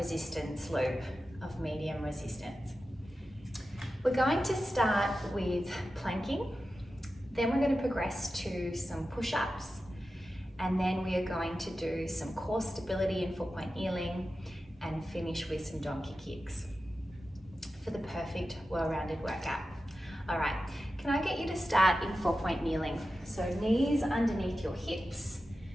loop of medium resistance. We're going to start with planking, then we're going to progress to some push-ups, and then we are going to do some core stability in 4-point kneeling and finish with some donkey kicks for the perfect well-rounded workout. All right, can I get you to start in 4-point kneeling? So knees underneath your hips,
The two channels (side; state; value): both; normal; correlation 0.92